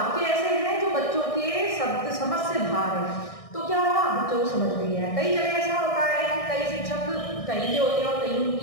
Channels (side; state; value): right; late; 1.6 ms